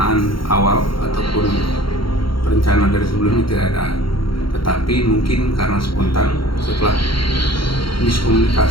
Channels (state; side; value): late; right; 0.73 ms